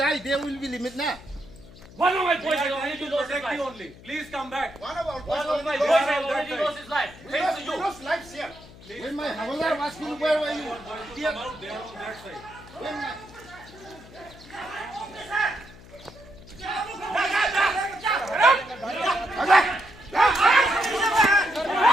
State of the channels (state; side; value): noise; left; hum, 20 dB below the sound